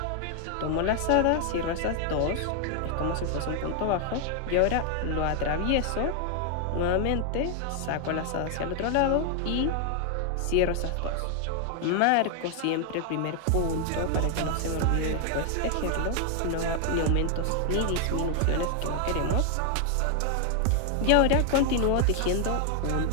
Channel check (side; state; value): both; different; correlation 0.00